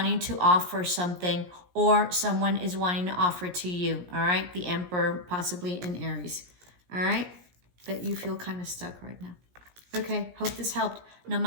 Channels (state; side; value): late; left; 17 ms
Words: to offer something, or someone is wanting to offer to you, all right? The Emperor, possibly in Aries, all right? But you feel kind of stuck right now. Okay, hope this helped.